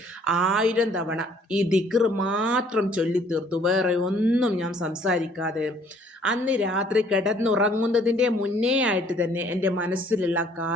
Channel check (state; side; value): normal; both; correlation 0.60